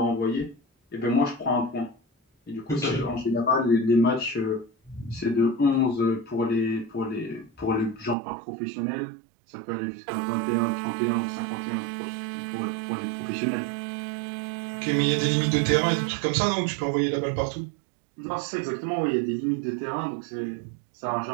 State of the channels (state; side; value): drops out; left; at 8.2 s